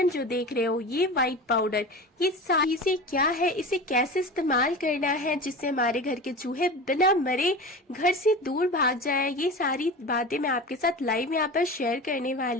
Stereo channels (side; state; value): both; normal; correlation 0.31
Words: जो देख रहे हो, ये वाइट पाउडर, ये सारी चीजें क्या है, इसे कैसे इस्तेमाल करना है जिससे हमारे घर के चूहे बिना मरे घर से दूर भाग जाए, ये सारी बातें मैं आपके साथ लाइव यहाँ पर शेयर करने